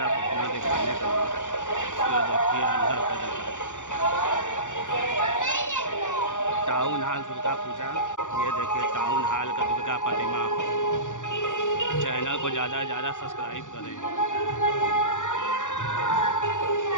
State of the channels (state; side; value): late; right; 0.86 ms